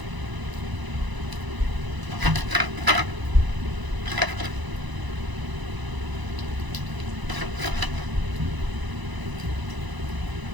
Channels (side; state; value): left; late; 1.0 ms